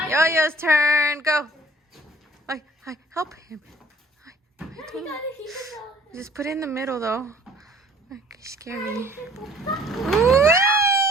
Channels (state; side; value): normal; both; correlation 0.54